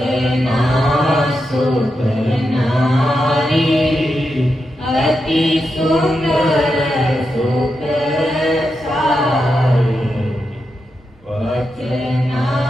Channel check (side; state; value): both; normal; correlation 0.86